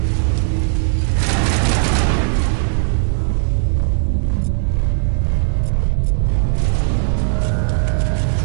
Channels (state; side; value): silent; left; digital silence